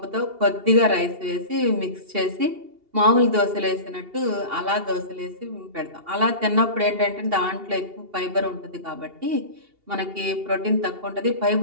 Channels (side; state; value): left; late; 2.8 ms